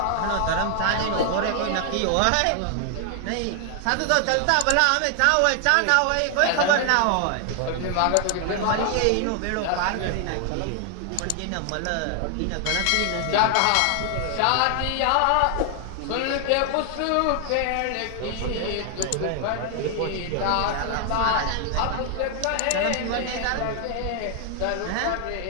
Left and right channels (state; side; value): different; both; correlation 0.00